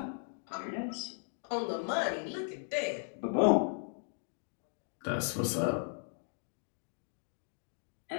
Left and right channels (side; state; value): right; silent; 53 dB below the other